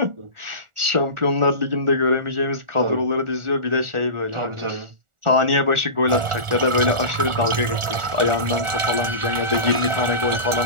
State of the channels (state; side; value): late; left; 1.4 ms